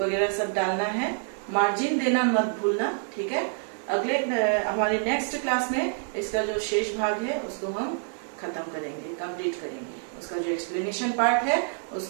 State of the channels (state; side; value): silent; left; 60 dB below the other